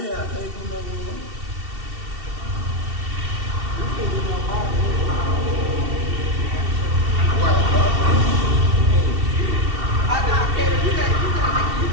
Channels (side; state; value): left; late; 2.7 ms